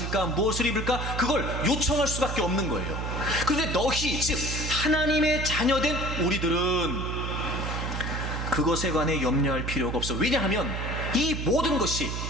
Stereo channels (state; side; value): noise; right; hum, 4 dB below the sound